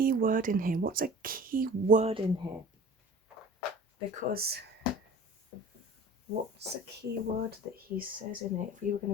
word in here? What's a key word in here? Because what's a key word that he says in it? If we were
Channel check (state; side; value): normal; both; correlation 0.43